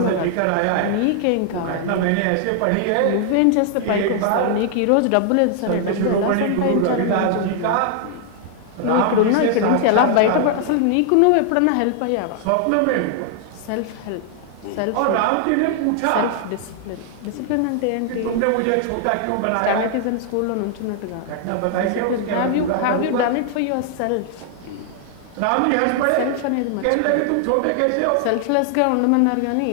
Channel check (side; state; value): both; different; correlation 0.00